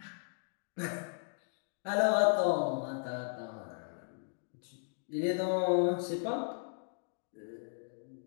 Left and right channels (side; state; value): right; silent; digital silence